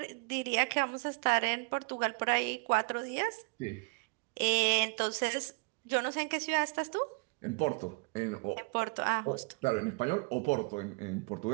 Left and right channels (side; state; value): left; quieter; 32.2 dB